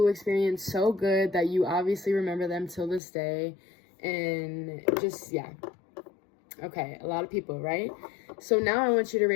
experience so good that you obviously remember them till this day, and just, yeah. Okay, a lot of people, right? So now I want you to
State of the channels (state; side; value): drops out; right; at 3.0 s